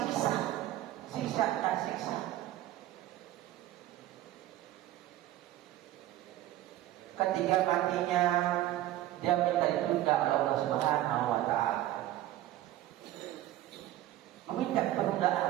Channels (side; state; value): left; quieter; 14.1 dB